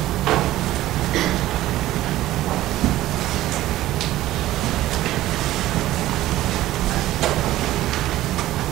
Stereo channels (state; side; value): quieter; left; 15.1 dB